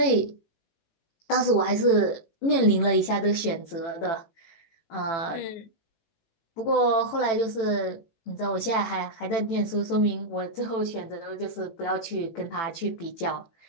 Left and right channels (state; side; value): late; right; 18 ms